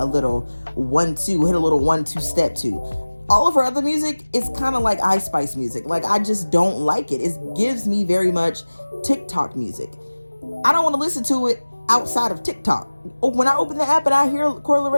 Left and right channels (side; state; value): both; inverted; correlation -1.00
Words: little 1-2, hit a little 1-2 step to. All of her other music is kind of like Ice Spice music. Like, I just don't like it. It gives me very much TikTok music. I don't want to listen to it outside of TikTok. When I open the app and I hear Coi